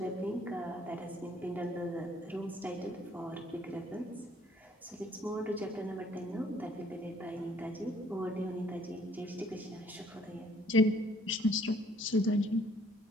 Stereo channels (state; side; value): normal; both; correlation 0.61